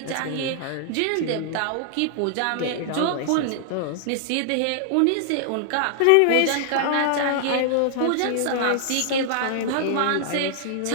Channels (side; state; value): both; different; correlation -0.01